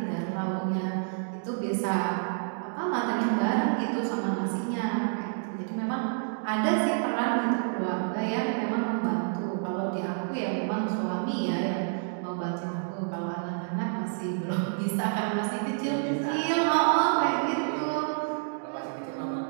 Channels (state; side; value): silent; left; digital silence